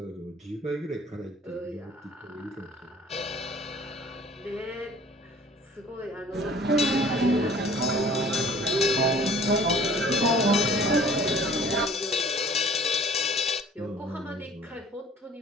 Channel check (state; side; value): normal; both; correlation 0.50